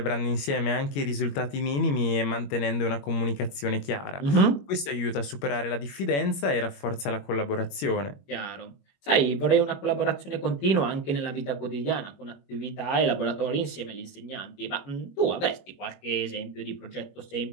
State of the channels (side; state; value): right; late; 21 ms